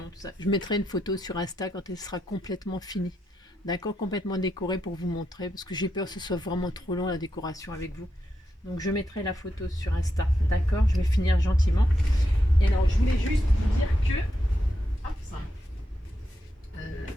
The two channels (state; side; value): normal; both; correlation 0.84